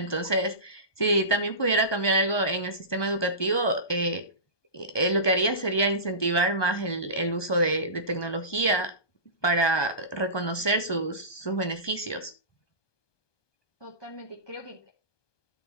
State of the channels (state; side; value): late; right; 1.2 ms